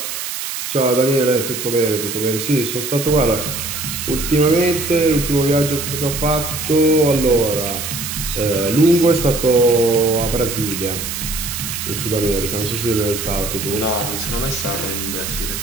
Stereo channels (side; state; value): right; noise; hiss, 5 dB below the sound